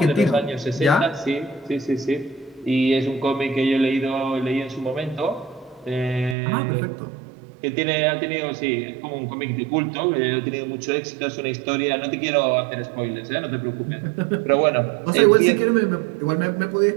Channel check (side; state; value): left; drops out; at 6.4 s